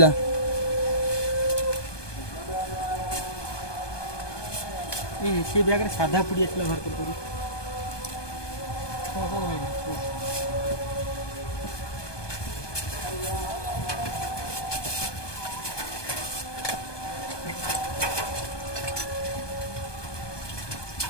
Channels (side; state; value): right; late; 1.2 ms